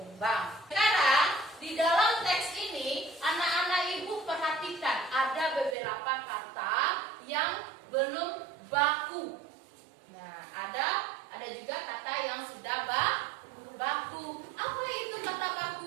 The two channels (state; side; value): drops out; left; at 5.8 s